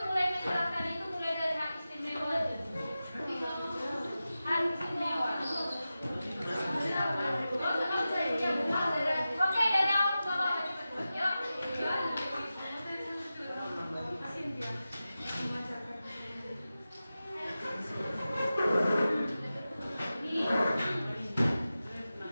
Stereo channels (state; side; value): inverted; both; correlation -0.94